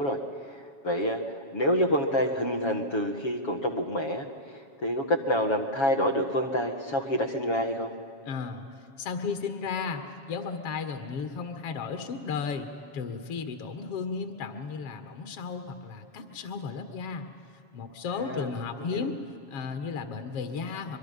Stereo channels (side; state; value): right; late; 7.3 ms